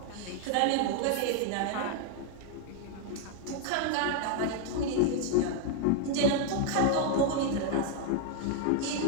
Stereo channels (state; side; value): different; both; correlation 0.00